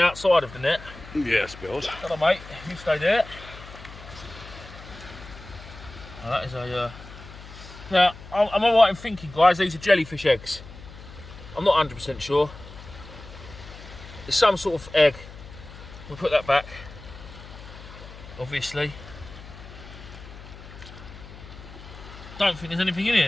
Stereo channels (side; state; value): left; noise; hum, 16 dB below the sound